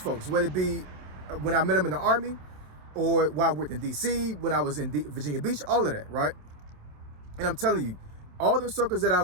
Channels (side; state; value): left; late; 27 ms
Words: whether it be when I met them in the Army or while I worked in DC, when I was in Virginia Beach, all of that, right? And I'm telling you, all the circles